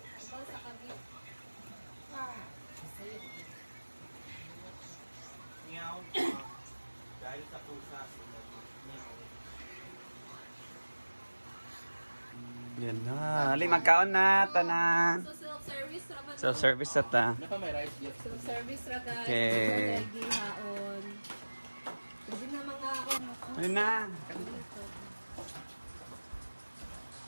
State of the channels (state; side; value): inverted; both; correlation -1.00